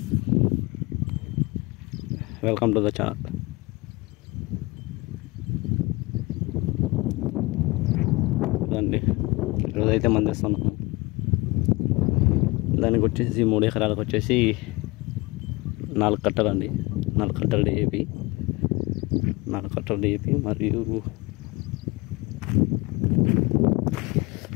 వెల్కమ్ టు ద ఛానల్. ఇదండి ఈరోజైతే మందిస్తున్నాము. దానికి వచ్చేసి 3 ఎకరాలకు వచ్చేసి 4 కట్టలండి. 4 కట్టలు DAP, 4 కట్టలు DAP మరియు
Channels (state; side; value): quieter; right; 23.4 dB